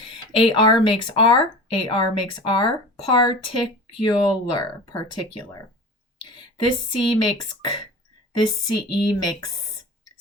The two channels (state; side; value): normal; both; correlation 0.35